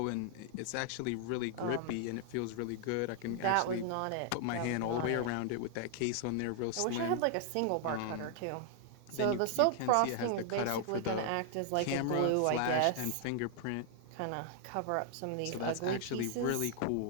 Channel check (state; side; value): different; both; correlation 0.00